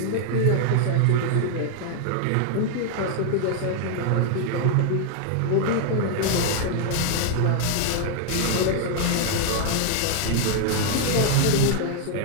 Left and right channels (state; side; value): different; both; correlation 0.00